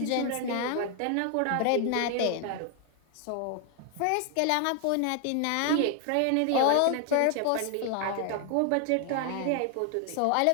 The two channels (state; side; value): different; both; correlation 0.00